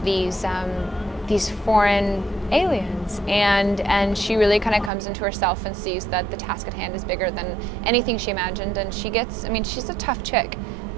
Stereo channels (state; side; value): drops out; left; at 4.9 s